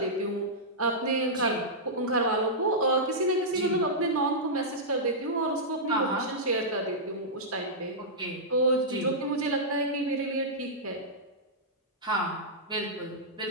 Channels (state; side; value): normal; both; correlation -0.12